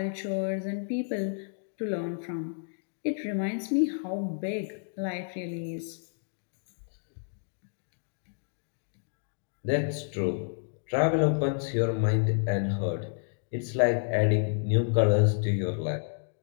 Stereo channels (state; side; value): silent; right; digital silence